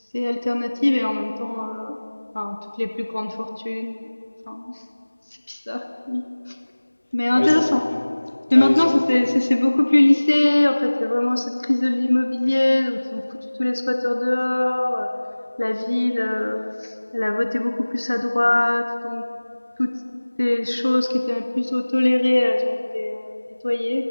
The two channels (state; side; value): inverted; both; correlation -1.00